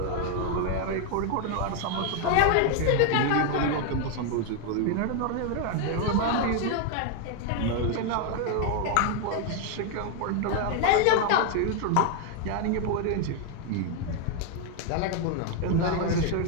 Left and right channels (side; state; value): both; different; correlation 0.00